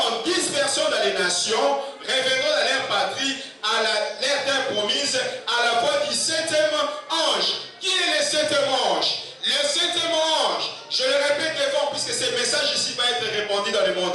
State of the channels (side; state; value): both; identical; correlation 1.00